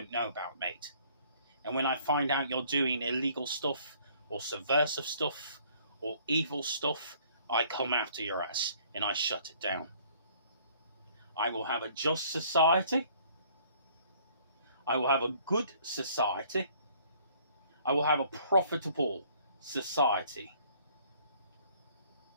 know about, mate. And when I find out you're doing illegal stuff, or subversive stuff, or evil stuff, I come after your ass, and I shut it down. I will have a just society. I will have a good society. I will have a profitable society.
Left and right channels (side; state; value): both; inverted; correlation -0.59